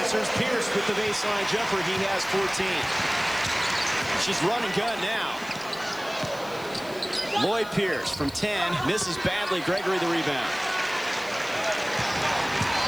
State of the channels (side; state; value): left; noise; hiss, 20 dB below the sound